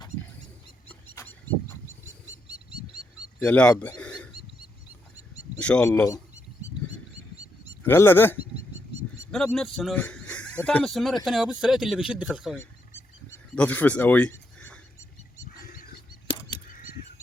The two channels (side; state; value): both; normal; correlation 0.80